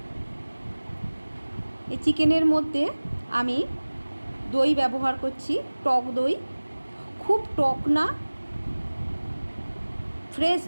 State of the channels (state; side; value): inverted; both; correlation -1.00